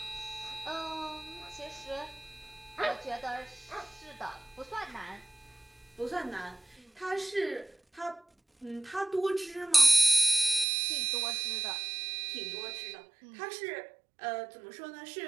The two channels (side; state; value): left; drops out; at 10.7 s